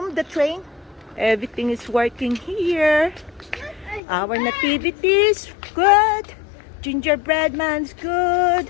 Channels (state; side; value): drops out; right; at 4.0 s